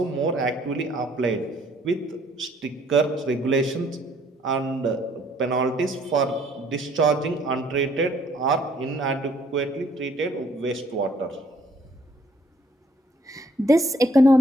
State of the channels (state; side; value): normal; both; correlation 0.63